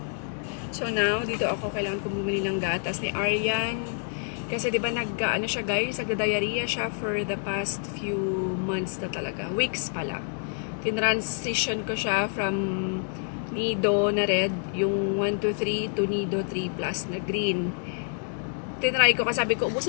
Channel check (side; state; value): right; silent; 60 dB below the other